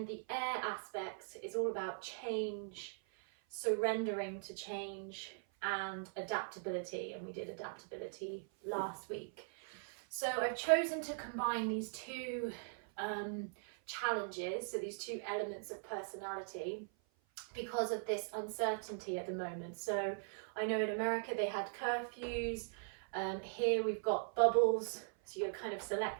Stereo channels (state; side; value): silent; left; 51 dB below the other